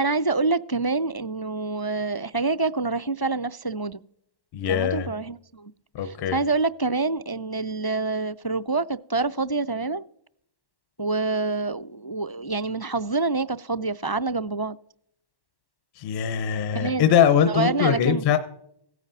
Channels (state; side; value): late; right; 1.1 ms